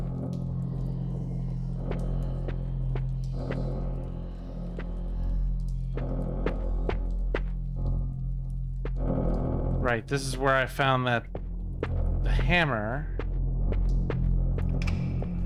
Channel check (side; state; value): both; identical; correlation 1.00